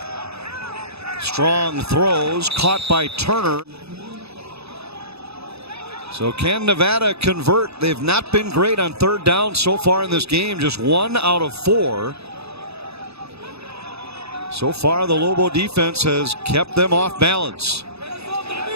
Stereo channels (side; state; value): left; late; 0.79 ms